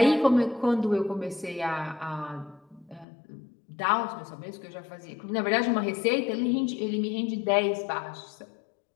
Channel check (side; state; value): right; drops out; at 3.1 s